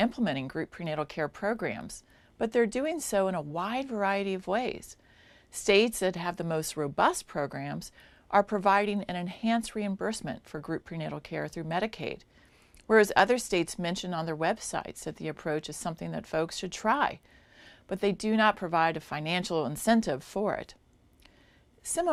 group prenatal care programs, but they're doing so in a wide variety of ways. States that have the most robust programs are providing an enhanced reimbursement for group prenatal care through Medicaid, whereas other states mention on their websites that the approach is something that folks should try, but they do not provide a financial incentive for it.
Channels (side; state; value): both; identical; correlation 1.00